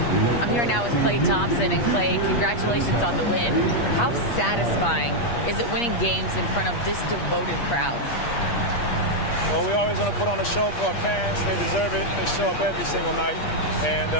I'm here now with Klay Thompson. And Klay, congratulations on the win. How satisfying is it winning games in front of this devoted crowd? Well, we always want to put on a show for our fans. They deserve it. They show up every single night. And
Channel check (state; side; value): late; right; 8.4 ms